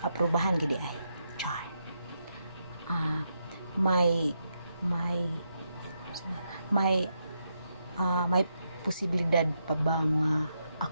aprubahan gid ay char may posibilidad pa bang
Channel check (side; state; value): both; inverted; correlation -0.82